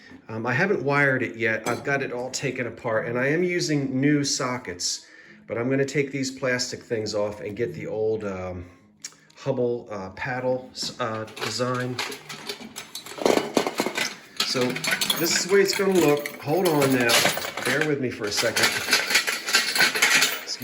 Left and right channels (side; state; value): both; identical; correlation 1.00